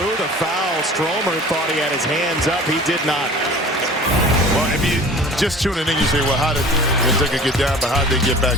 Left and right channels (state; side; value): normal; both; correlation 0.43